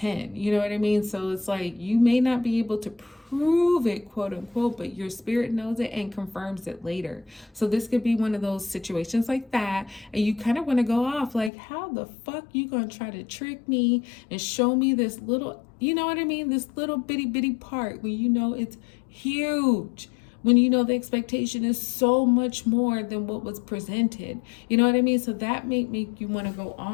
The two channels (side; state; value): right; drops out; at 11.5 s